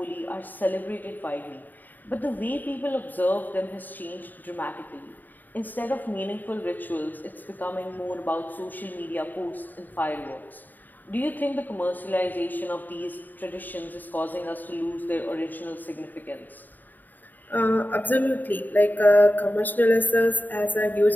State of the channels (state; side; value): late; right; 0.087 ms